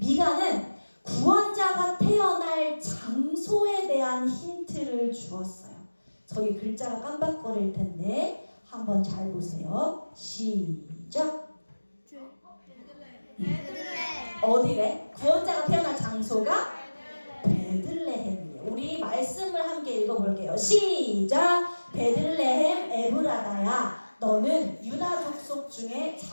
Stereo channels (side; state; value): both; inverted; correlation -1.00